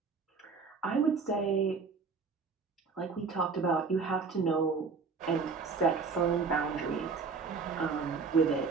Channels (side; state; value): left; quieter; 4.9 dB